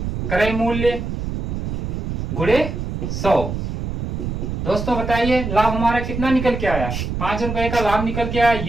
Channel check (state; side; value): noise; right; rumble, 4 dB below the sound